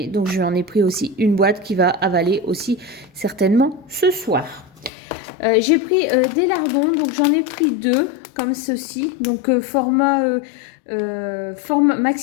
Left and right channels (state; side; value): drops out; right; at 4.9 s